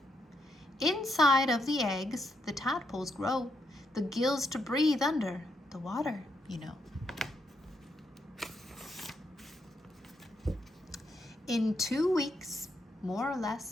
Inside of the eggs, the tadpoles grow, the gills to breathe under the water, you know. In 2 weeks, more or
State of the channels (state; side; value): normal; both; correlation 0.79